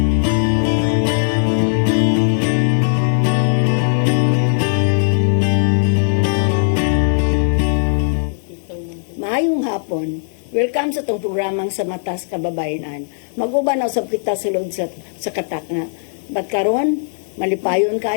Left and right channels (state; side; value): silent; right; 59 dB below the other